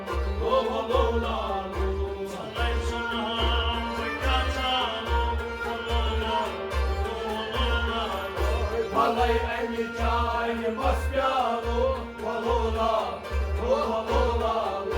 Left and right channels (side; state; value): both; identical; correlation 1.00